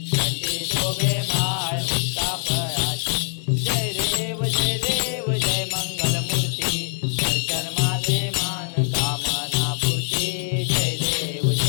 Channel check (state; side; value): silent; right; digital silence